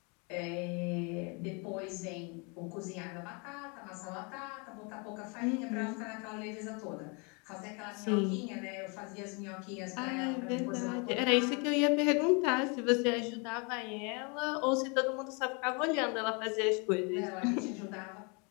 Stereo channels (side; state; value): right; quieter; 32.7 dB